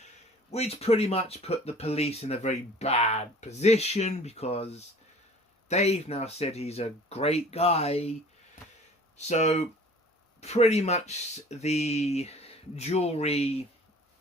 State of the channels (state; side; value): normal; both; correlation 0.48